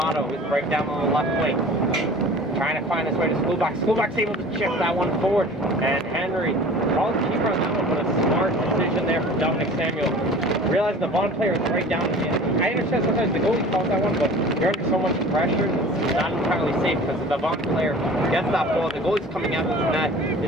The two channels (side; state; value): both; normal; correlation 0.43